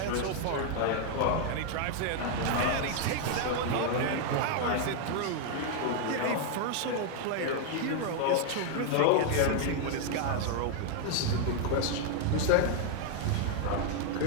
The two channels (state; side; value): different; both; correlation 0.00